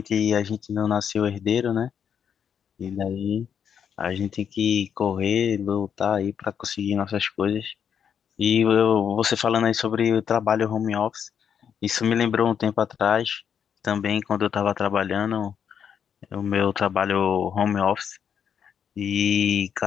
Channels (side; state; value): right; quieter; 7.9 dB